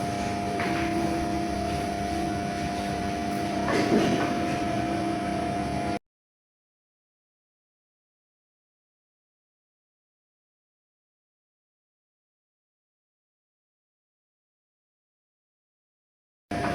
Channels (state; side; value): identical; both; correlation 1.00